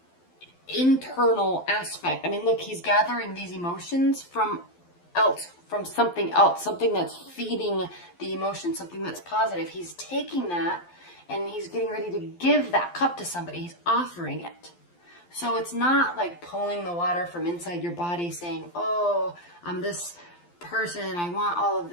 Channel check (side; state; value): right; late; 12 ms